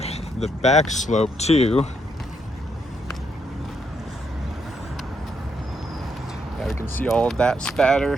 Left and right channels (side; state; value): both; normal; correlation 0.76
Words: the back slope too. Yeah, we can see all of that